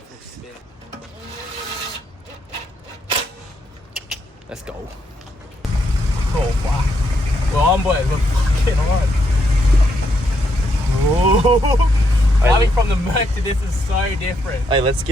for a spin. Let's go. Oh fuck. We're on, boys. We're fucking on. Oh. Coming from the Merc to this is so different. Hey, let's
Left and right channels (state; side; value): normal; both; correlation 0.77